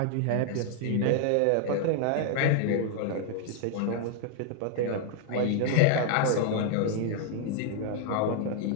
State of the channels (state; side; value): different; both; correlation 0.00